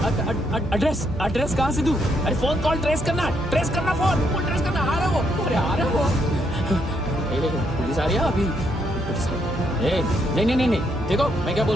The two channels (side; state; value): right; noise; hum, 12 dB below the sound